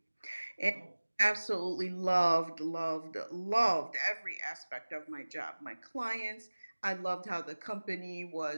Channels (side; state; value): both; inverted; correlation -1.00